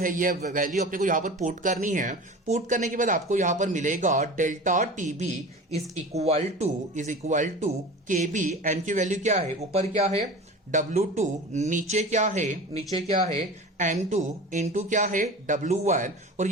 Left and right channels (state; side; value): normal; both; correlation 0.35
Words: ये वैल्यू अपने को यहां पर पुट करनी है। पुट करने के बाद आपको यहां पर मिलेगा delta TB is equal to KB. M की वैल्यू क्या है, ऊपर क्या है, W2, नीचे क्या है M2 इंटू क्या है, W1। और